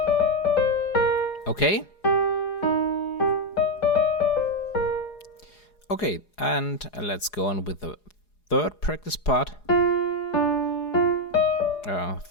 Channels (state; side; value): late; right; 4.8 ms